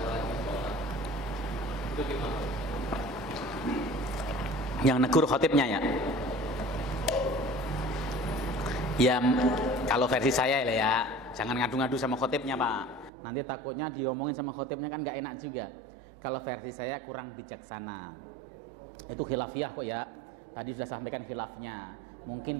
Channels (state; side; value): drops out; left; at 13.1 s